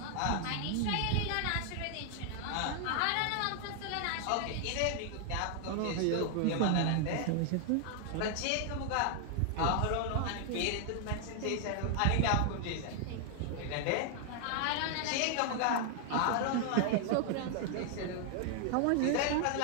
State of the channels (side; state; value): both; different; correlation 0.00